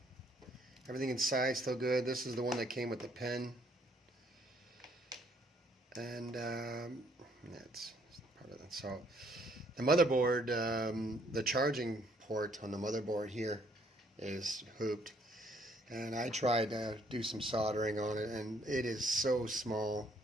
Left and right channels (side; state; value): both; normal; correlation 0.66